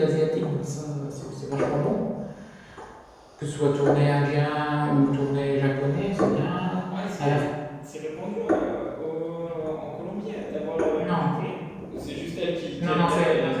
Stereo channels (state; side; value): identical; both; correlation 1.00